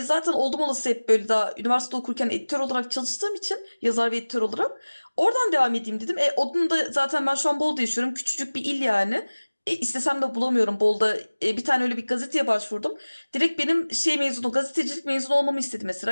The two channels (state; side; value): inverted; both; correlation -1.00